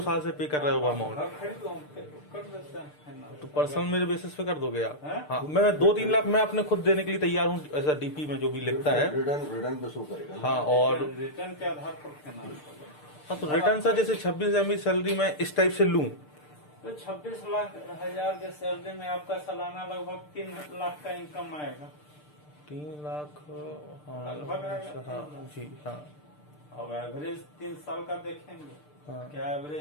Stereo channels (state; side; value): late; right; 6.7 ms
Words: साल से पे कर रहे हैं वो अमाउंट, घर खरीद लो, कर देते हैं ना। तो पर्सनल मेरे बेसिस पे कर दोगे आप? हैं? हाँ, मैं 2-3 लाख मैं अपने खुद देने के लिए तैयार हूँ, ऐसा डीपी में जो भी लिखता है। रिटर्न पे शो करेगा। हाँ, और रिटर्न के आधार पर देना पड़ेगा। हाँ, तो रिटर्न सर जैसे 26,000 मेरी सैलरी मैं इस टाइप से लूँ, तो 26 लाख हजार के सैलरी में आपका सालाना लगभग 3 लाख का इनकम आएगा। 3 लाख, हाँ, लगभग आएगा। अच्छा, हाँ जी, हाँ, अब एवरेज 3 साल का देखेंगे, हाँ, क्या